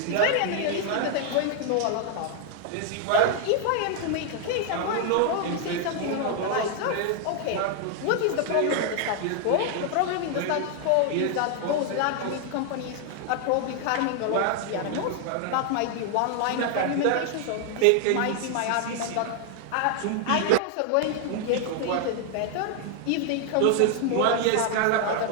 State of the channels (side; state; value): both; different; correlation 0.00